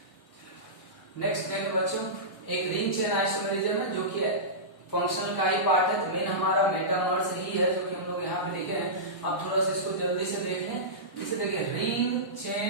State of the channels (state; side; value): late; right; 1.2 ms